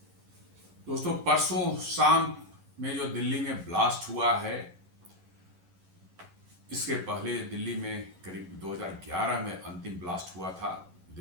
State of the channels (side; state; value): left; late; 11 ms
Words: दोस्तों, परसों शाम में जो दिल्ली में ब्लास्ट हुआ है, इसके पहले दिल्ली में करीब 2011 में अंतिम ब्लास्ट हुआ था